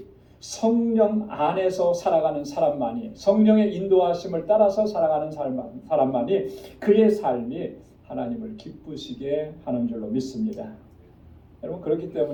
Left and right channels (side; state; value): both; identical; correlation 1.00